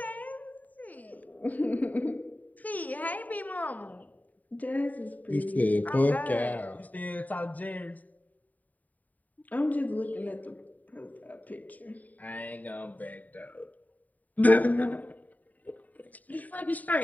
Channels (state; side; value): late; right; 0.076 ms